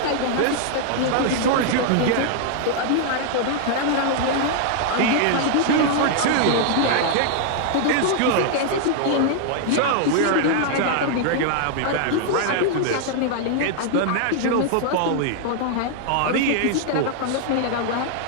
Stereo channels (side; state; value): both; different; correlation 0.00